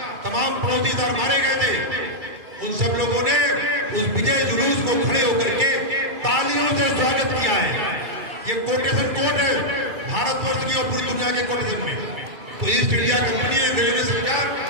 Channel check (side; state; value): left; late; 2.3 ms